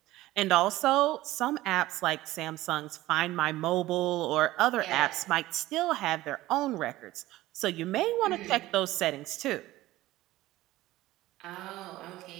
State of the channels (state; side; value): quieter; left; 16.8 dB